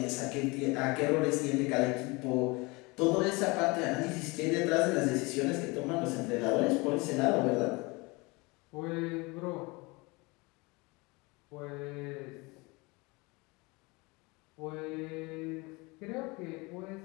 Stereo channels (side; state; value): right; quieter; 25.8 dB